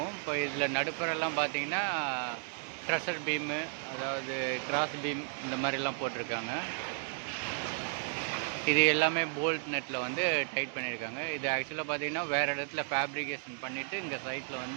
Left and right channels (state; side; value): silent; left; 55 dB below the other